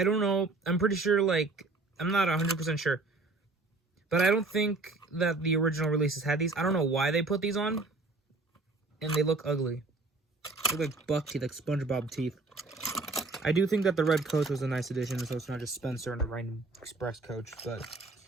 don't know, I'm pretty sure, like, I'm not 100% sure, but I don't think that the original releases had these. I don't know why they put these on, and they look ugly. They look like buck teeth, like SpongeBob teeth. I do think that the red coach was a nice addition, so it's not just Spencer and a random express coach, but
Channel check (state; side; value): quieter; left; 3.3 dB